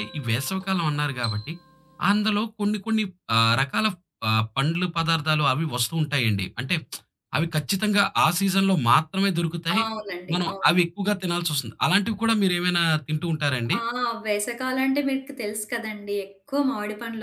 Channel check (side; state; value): both; identical; correlation 1.00